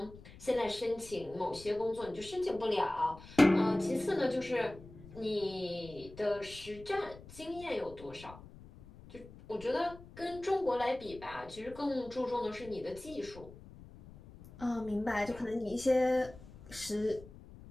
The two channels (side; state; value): left; noise; rumble, 18 dB below the sound